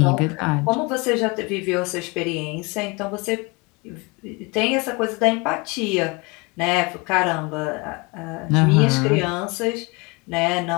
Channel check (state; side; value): quieter; right; 27.8 dB